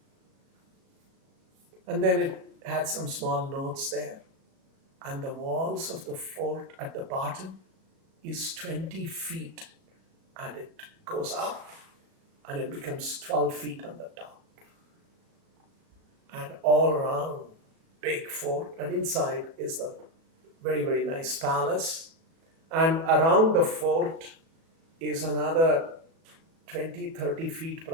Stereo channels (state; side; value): late; left; 37 ms